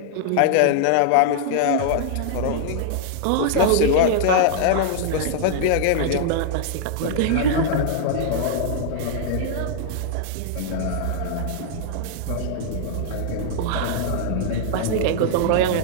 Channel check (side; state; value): both; different; correlation -0.01